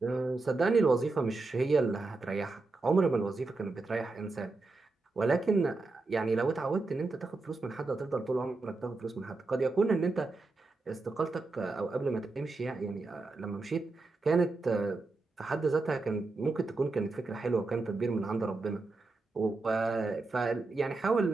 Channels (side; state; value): left; quieter; 3.5 dB